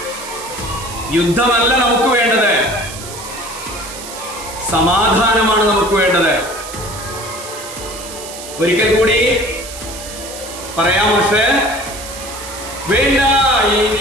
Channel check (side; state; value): right; noise; hiss, 12 dB below the sound